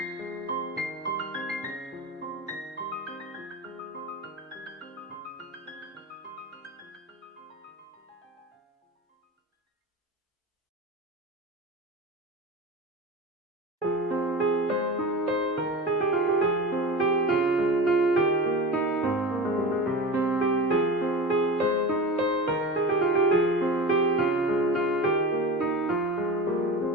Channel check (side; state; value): both; normal; correlation 0.30